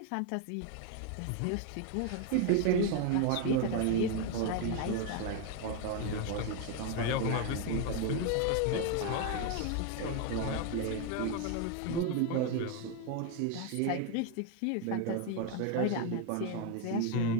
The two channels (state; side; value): different; both; correlation 0.01